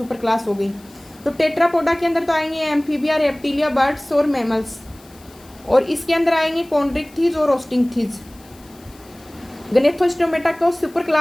क्लास हो गई। तो टेट्रापोडा के अंदर तो आएंगे एम्फीबिया, रेप्टिलिया, बर्ड्स और मैमल्स, और इसके अंदर आएंगे कॉन्ड्रिक्थीज और ओस्टिंगथीज। गनेथोस्टोमेटा को सुपर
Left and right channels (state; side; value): noise; left; hiss, 26 dB below the sound